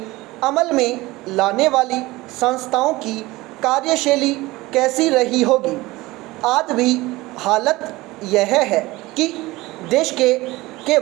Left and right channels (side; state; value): left; quieter; 19.9 dB